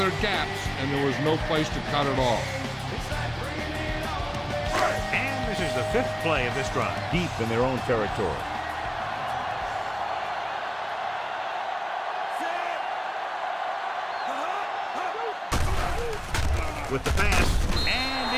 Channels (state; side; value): identical; both; correlation 1.00